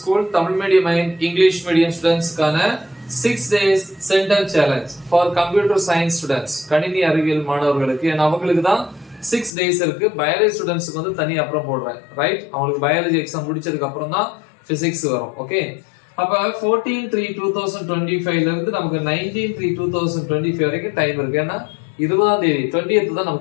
Tamil medium and English medium ஸ்டூடண்ட்ஸ்க்கான 6 days centum challenge for computer science students, கணினி அறிவியல் மாணவர்களுக்கு. ஏன்னா அவங்களுக்கு தான் 6 days இருக்கு. பயாலஜி ஸ்டூடண்ட்ஸ்க்கு வந்து தனி அப்புறம் போடுறேன், ரைட்? அவங்களுக்கு பயாலஜி எக்ஸாம் முடிச்சதுக்கு அப்புறம் தான் பிசிக்ஸ் வரும், ஓகே? அப்ப 14/3/2025 ல இருந்து நமக்கு 19/3/2025 வரைக்கும் டைம் இருக்கு. ஏன்னா 20ஆம் தேதி 20th தான்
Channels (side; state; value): right; drops out; at 9.5 s